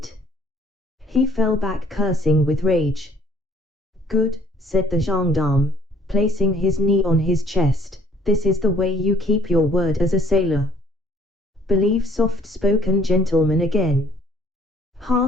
He fell back cursing with rage. "Good," said the gendarme, placing his knee on his chest, "this is the way you keep your word as a sailor. Believe soft-spoken gentleman again.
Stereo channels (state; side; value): normal; both; correlation 0.60